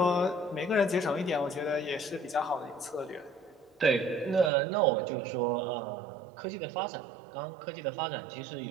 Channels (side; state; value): left; drops out; at 4.5 s